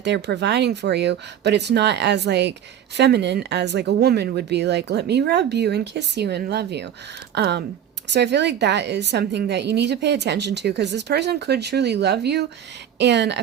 they're providing for you, but it's not as feminine as a woman would be, let me rub you and kiss you and love you. So I feel like that is something that you need to pay attention to, because this person could truly love you. And I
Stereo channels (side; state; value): left; quieter; 9.8 dB